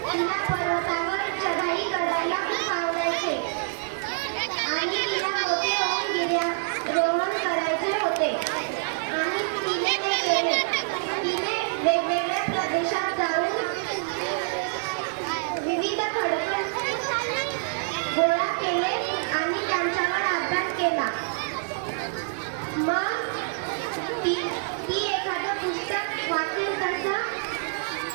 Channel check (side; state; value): left; silent; digital silence